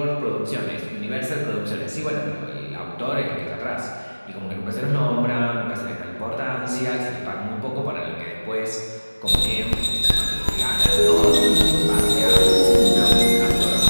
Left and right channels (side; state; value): both; inverted; correlation -1.00